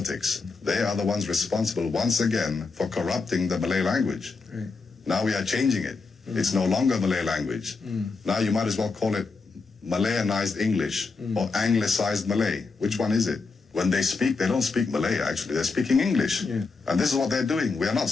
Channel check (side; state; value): right; quieter; 4.3 dB